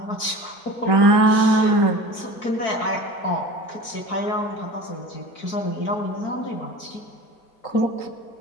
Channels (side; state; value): right; late; 4.5 ms